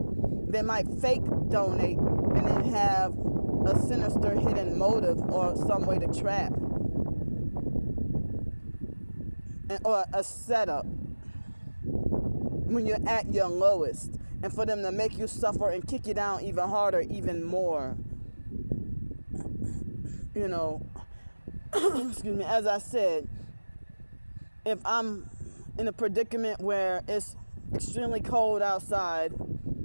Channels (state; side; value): inverted; both; correlation -1.00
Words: They might fake donate and then have a sinister hidden motive or some way to trap. Or a setup when you're at your lowest, and for them to make you suffer and kick you down even harder, even more. you know, excuse me, as I said, if I'm in a predicament where it's extremely cold outside